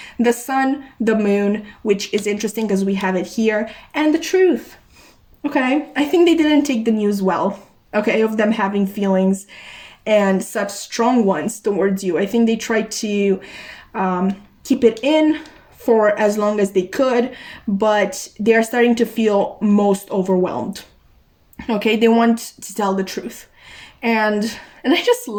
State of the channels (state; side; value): identical; both; correlation 1.00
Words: The sun, the moon, which is interesting because we have it here, and the truth. Okay, I think they didn't take the news well, okay, of them having feelings and such strong ones towards you. I think they tried to keep it in for as long as they could, but they are starting to feel most overwhelmed. Okay, they want to tell the truth. And I just